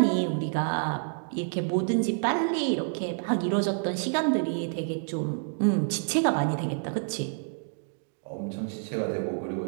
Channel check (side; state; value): left; silent; digital silence